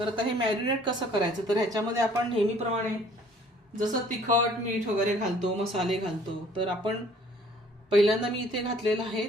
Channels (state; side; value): normal; both; correlation 0.56